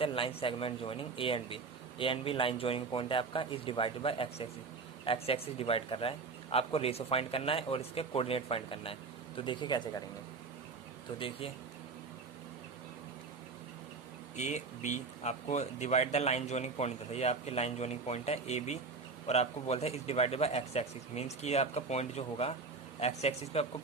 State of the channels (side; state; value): left; quieter; 4.4 dB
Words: line segment joining A and B line joining point है आपका, is divided by X axis divide कर रहा है, आपको रेशो फाइंड करना है और इसके कोऑर्डिनेट फाइंड करना है। तो देखिए कैसे करेंगे। तो देखिए ए बी, आपको divide the line joining point था, ये आपकी लाइन जॉइनिंग पॉइंट है ए बी, और आपको बोलता है is divided by X axis, means कि ये आपका पॉइंट जो होगा एक्स एक्सिस पे आपको